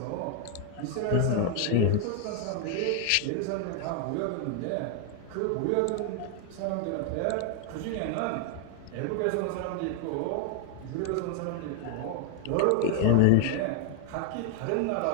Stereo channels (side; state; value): both; different; correlation 0.00